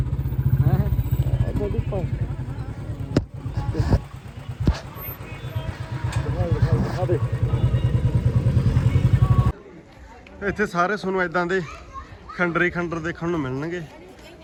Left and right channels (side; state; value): both; identical; correlation 1.00